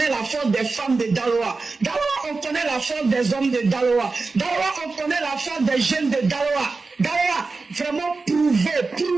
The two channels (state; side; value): quieter; left; 4.0 dB